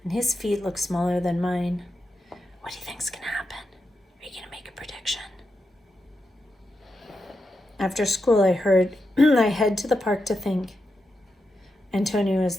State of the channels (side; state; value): both; normal; correlation 0.87